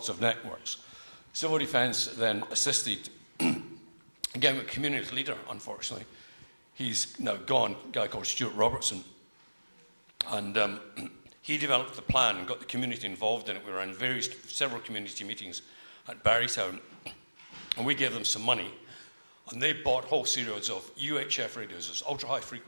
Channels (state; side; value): inverted; both; correlation -1.00